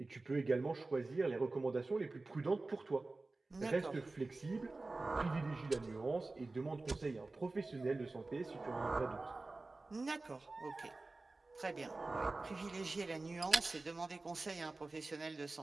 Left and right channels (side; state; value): left; quieter; 3.3 dB